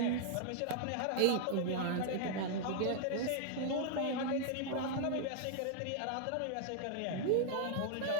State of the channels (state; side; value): different; both; correlation -0.01